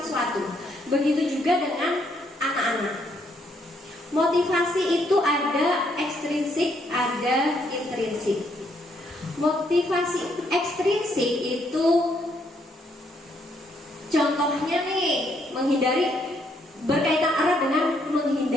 sesuatu. Begitu juga dengan anak-anak. Motivasi itu ada ekstrinsik, ada intrinsik. Motivasi ekstrinsik itu contohnya nih, berkaitan erat dengan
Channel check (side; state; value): both; normal; correlation 0.72